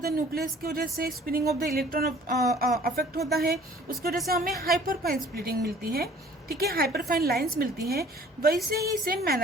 द न्यूक्लियस की वजह से spinning of the electron affect होता है, उसकी वजह से हमें हाइपरफाइन स्प्लिटिंग मिलती है. ठीक है, हाइपरफाइन लाइंस मिलती हैं. वैसे ही सेम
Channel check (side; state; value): both; normal; correlation 0.53